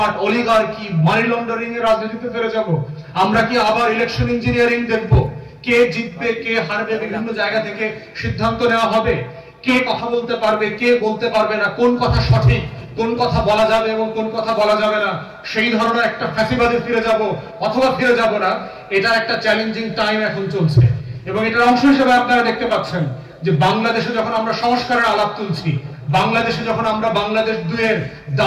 অলিগার্কি, মানি লন্ডারিং এর রাজনীতিতে ফিরে যাব? আমরা কি আবার ইলেকশন ইঞ্জিনিয়ারিং দেখব? কে জিতবে কে হারবে বিভিন্ন জায়গা থেকে সিদ্ধান্ত নেওয়া হবে। কে কথা বলতে পারবে কে বলতে পারবে না, কোন কথা সঠিক, কোন কথা বলা যাবে এবং কোন কথা বলা যাবে না, সেই ধরনের একটা ফ্যাসিবাদে ফিরে যাব অথবা ফিরে যাব না, এটা একটা চ্যালেঞ্জিং টাইম এখন চলছে। এবং এটার অংশ হিসেবে আপনারা দেখতে পাচ্ছেন যে বাংলাদেশে যখন আমরা সংস্কারের আলাপ তুলছি, বাংলাদেশে যখন আমরা বাংলাদেশ 2-এর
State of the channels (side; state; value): both; identical; correlation 1.00